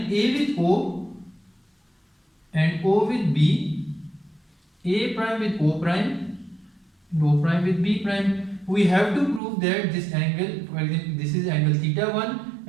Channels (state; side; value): drops out; left; at 9.4 s